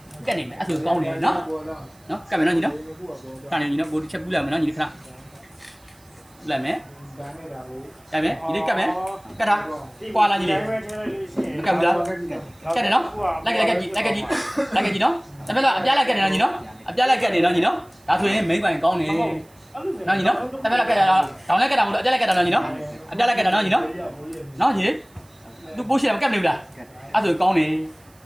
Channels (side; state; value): right; noise; hiss, 30 dB below the sound